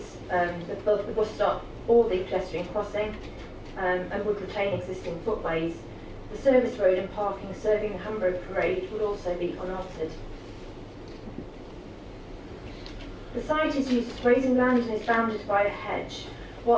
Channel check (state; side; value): identical; both; correlation 1.00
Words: both the bus stop or the pedestrian crossing, and would retain existing footways. The service road and parking serving the Hamburg Parade would also be unaltered. The site is used as grazing land and is bounded by a hedge.